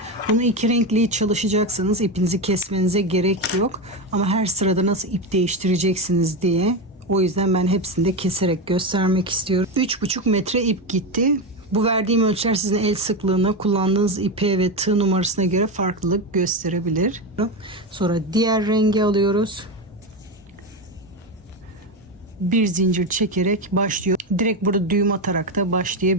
Bunu iki renkli çalışacaksınız. İpinizi kesmenize gerek yok. Ama her sırada nasıl ip değiştireceksiniz diye. O yüzden ben hepsini de keserek göstermek istiyorum. 3,5 metre ip gitti. Bu verdiğim ölçüler sizin el sıklığına, kullandığınız ipe ve tığ numarasına göre farklılık gösterebilir. Sonra diğer rengi alıyoruz. Bir zincir çekerek başlıyor. Direkt burada düğüm atarak da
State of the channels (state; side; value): normal; both; correlation 0.14